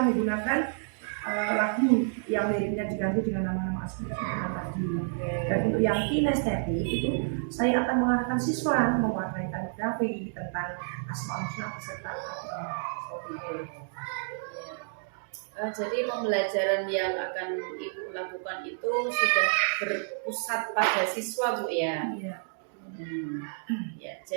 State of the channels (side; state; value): left; silent; digital silence